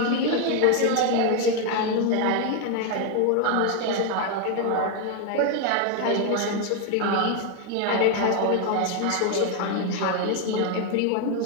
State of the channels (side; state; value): both; different; correlation 0.01